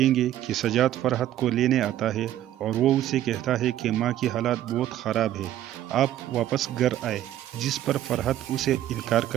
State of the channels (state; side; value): quieter; left; 12.5 dB